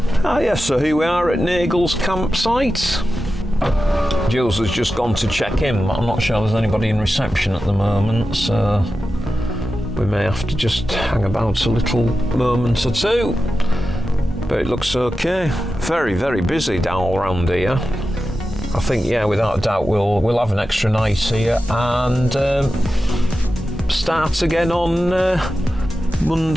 Ah yes, so here we are at Nagel's campsite. Jules has just gone to check in, but I'm not sure there's anybody in reception at the moment, so we may have to just hang about a little moment or two. But it looks okay. Very, very busy down around here. I think, yeah, without a doubt, we'll have an extra night here and start again on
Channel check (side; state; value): both; normal; correlation 0.92